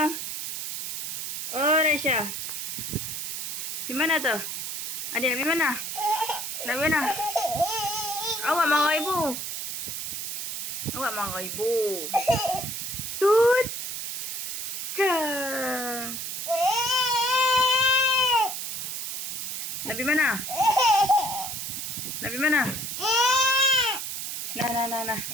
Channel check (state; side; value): noise; right; hiss, 4 dB below the sound